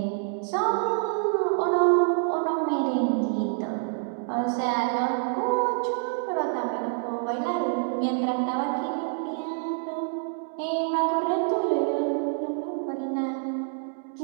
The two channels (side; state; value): left; silent; 60 dB below the other